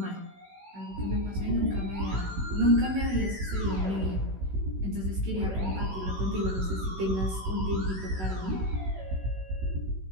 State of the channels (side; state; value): left; late; 16 ms